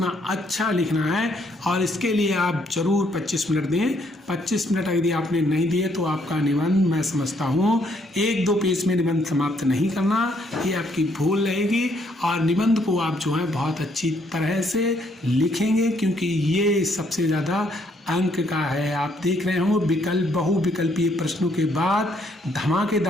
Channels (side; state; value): both; normal; correlation 0.69